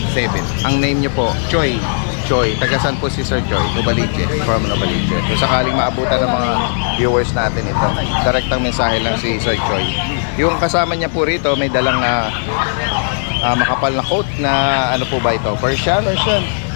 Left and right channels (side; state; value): right; silent; 62 dB below the other